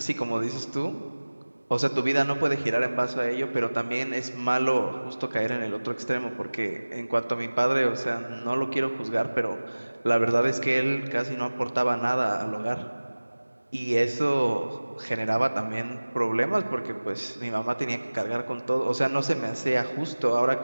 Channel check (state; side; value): inverted; both; correlation -1.00